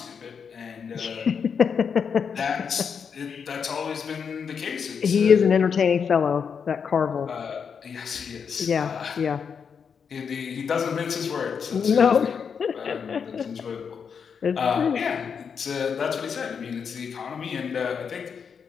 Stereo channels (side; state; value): right; quieter; 6.5 dB